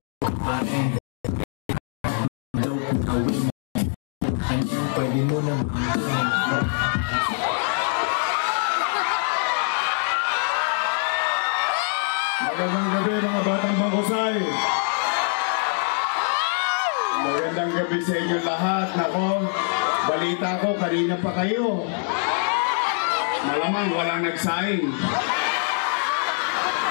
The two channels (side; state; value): right; silent; 55 dB below the other